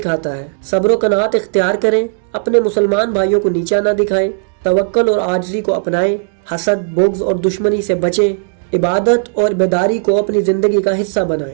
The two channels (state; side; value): silent; left; digital silence